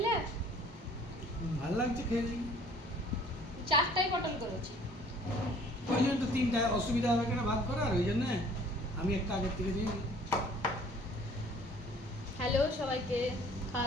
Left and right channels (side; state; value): both; normal; correlation 0.54